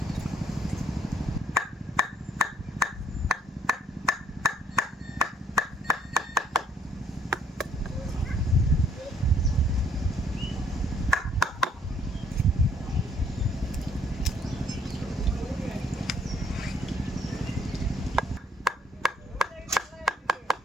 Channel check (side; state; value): both; normal; correlation 0.65